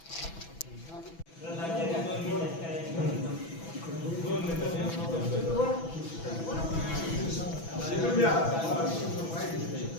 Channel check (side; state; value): right; late; 6.0 ms